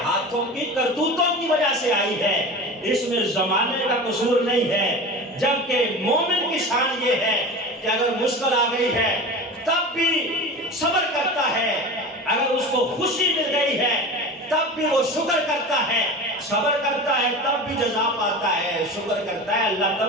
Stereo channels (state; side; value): normal; both; correlation 0.32